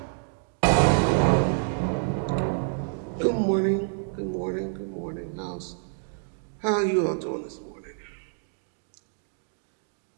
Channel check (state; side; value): silent; left; digital silence